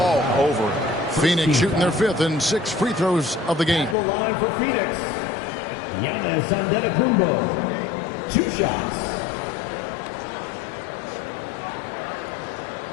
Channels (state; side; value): drops out; right; at 4.0 s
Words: over. Phoenix shooting their 5th and 6 free throws of the game. The line for Phoenix. Giannis Antetokounmpo. 2 shots.